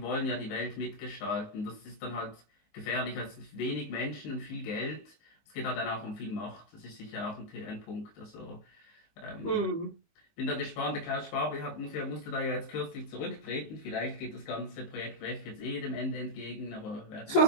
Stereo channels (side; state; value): right; late; 19 ms